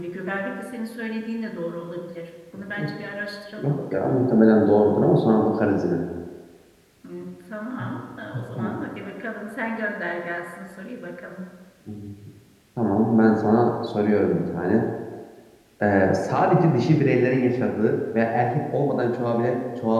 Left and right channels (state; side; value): identical; both; correlation 1.00